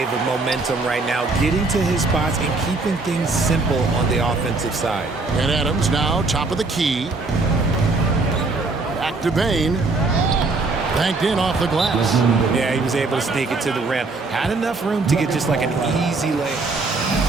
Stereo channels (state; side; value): quieter; left; 3.6 dB